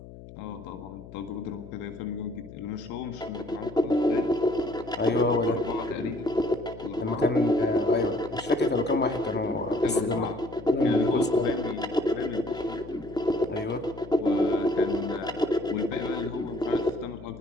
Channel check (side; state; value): left; noise; hum, 16 dB below the sound